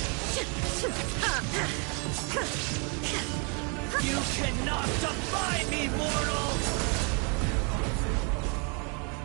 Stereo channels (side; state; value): left; quieter; 35.2 dB